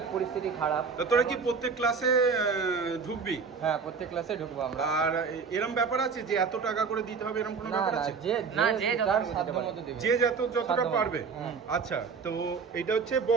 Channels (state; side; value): quieter; left; 5.4 dB